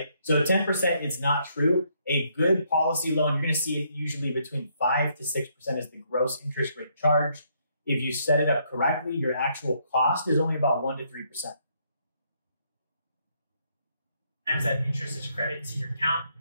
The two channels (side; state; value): both; inverted; correlation -0.72